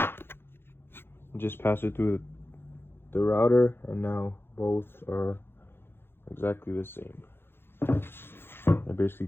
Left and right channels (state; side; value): late; right; 0.11 ms